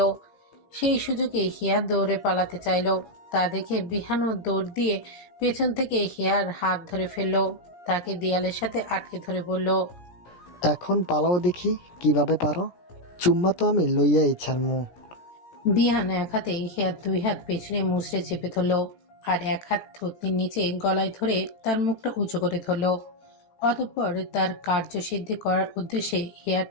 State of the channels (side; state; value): right; late; 17 ms